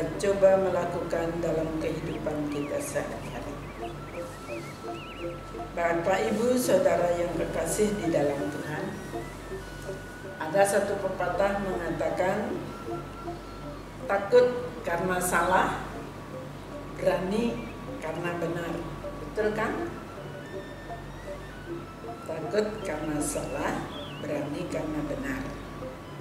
coba melakukan dalam kehidupan kita sehari-hari. Bapak, Ibu, Saudara yang kekasih di dalam Tuhan, ada satu pepatah mengatakan, takut karena salah, berani karena benar. Betul kan? Takut karena salah, berani karena benar.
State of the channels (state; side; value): identical; both; correlation 1.00